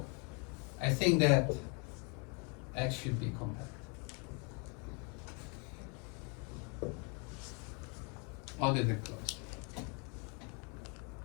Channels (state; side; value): quieter; right; 34.6 dB